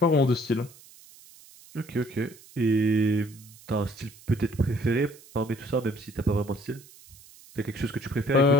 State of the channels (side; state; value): right; noise; hiss, 23 dB below the sound